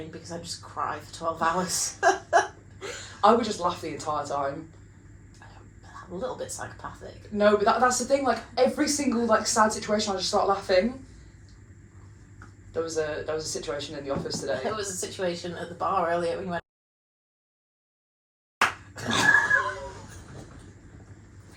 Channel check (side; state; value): both; identical; correlation 1.00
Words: because I just cry for 12 hours. I would just laugh the entire time. A little bit psychopathic. No, but that's the thing, like, every single, like, sad situation, I just start laughing. There was a situation in the office today. There was a situation at the bar earlier when we went...